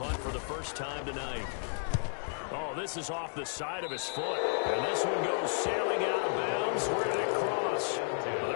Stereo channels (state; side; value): silent; right; digital silence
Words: for the first time tonight. Oh, this is off the side of his foot, and this one goes sailing out of bounds. Where did it cross? Well,